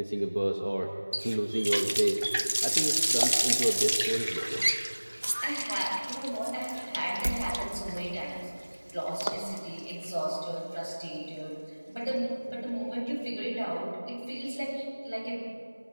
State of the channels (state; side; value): inverted; both; correlation -1.00